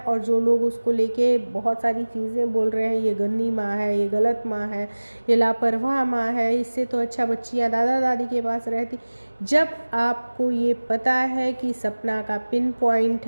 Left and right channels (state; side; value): inverted; both; correlation -1.00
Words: जो लोग उसको लेके बहुत सारी चीज़ें बोल रहे हैं, ये गंदी माँ है, ये गलत माँ है, ये लापरवाह माँ है, इससे तो अच्छा बच्चियां दादा दादी के पास रहती। जब आपको ये पता है कि सपना का पिन पॉइंट